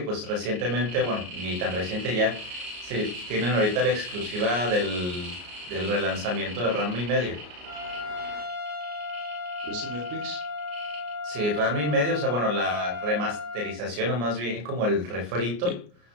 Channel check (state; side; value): late; left; 33 ms